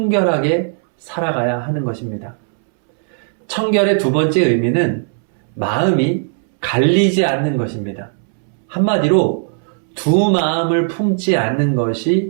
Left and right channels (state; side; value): silent; left; 68 dB below the other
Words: 살아가야 하는 것입니다. 청결의 두 번째 의미는 마음이 갈리지 않는 것입니다. 한마디로 두 마음을 품지 않는